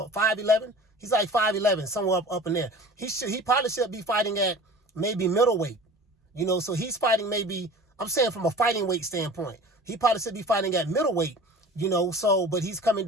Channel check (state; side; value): normal; both; correlation 0.41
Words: 5'11"? He's like 5'11", somewhere up in there. He probably should be fighting at maybe middleweight, so he's fighting maybe, I'm saying from a fighting weight standpoint, he probably should be fighting at middleweight, but he's coming